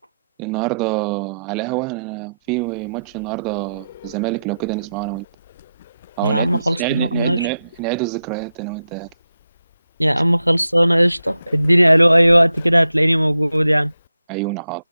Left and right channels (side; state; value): both; inverted; correlation -0.86